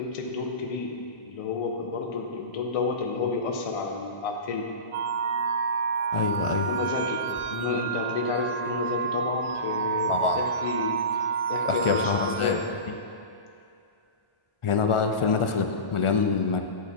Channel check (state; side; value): late; right; 1.4 ms